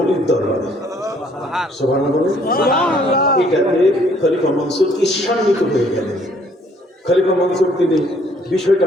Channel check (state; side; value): normal; both; correlation 0.63